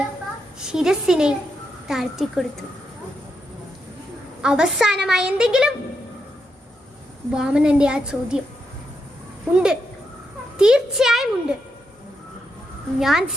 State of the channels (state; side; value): normal; both; correlation 0.82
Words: ശിരസിനെ താഴ്ത്തിക്കൊടുത്തു. അവസാനമായി എന്തെങ്കിലും? വാമനന്റെ ആ ചോദ്യം. ഉണ്ട്, തീർച്ചയായും ഉണ്ട്. ഞാൻ